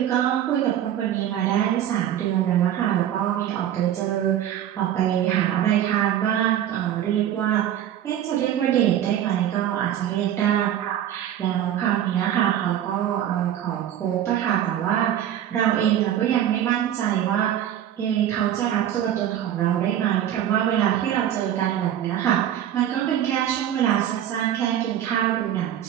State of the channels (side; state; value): left; quieter; 10.9 dB